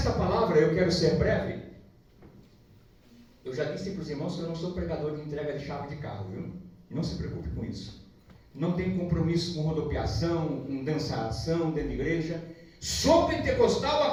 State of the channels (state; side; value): identical; both; correlation 1.00